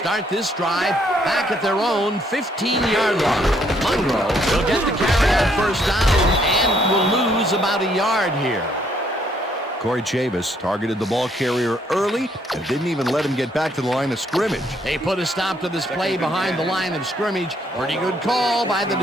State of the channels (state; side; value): normal; both; correlation 0.69